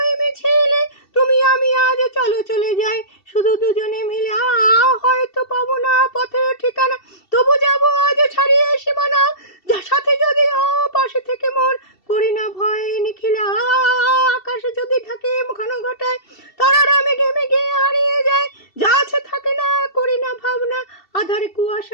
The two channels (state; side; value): late; right; 2.7 ms